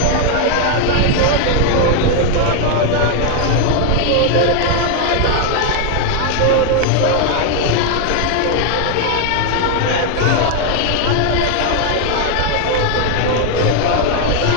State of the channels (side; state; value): both; different; correlation 0.00